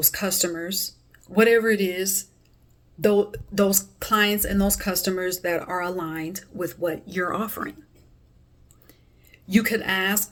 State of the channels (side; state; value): both; identical; correlation 1.00